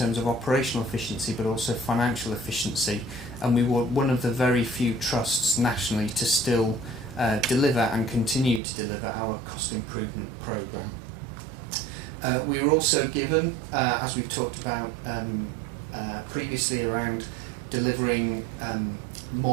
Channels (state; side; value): drops out; left; at 8.6 s